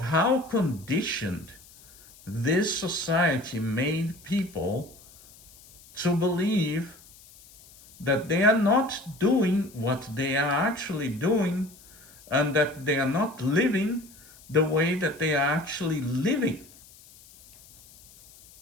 how conditioned this society made people to believe that they are not doing what they are actually doing, and that they are not living the way that they are actually living.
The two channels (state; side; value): noise; left; hiss, 23 dB below the sound